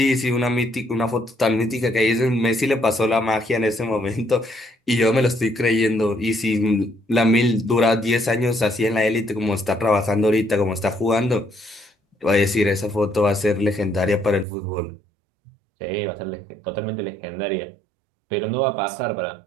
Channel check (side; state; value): left; drops out; at 14.5 s